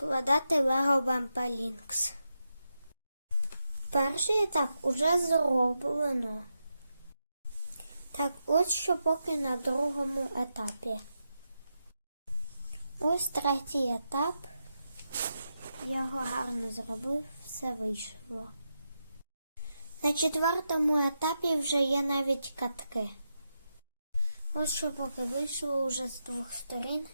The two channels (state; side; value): inverted; both; correlation -0.87